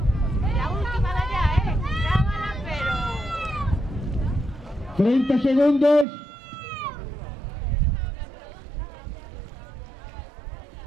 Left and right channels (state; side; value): drops out; left; at 6.1 s